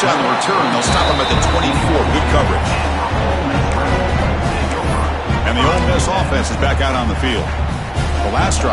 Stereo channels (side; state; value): both; identical; correlation 1.00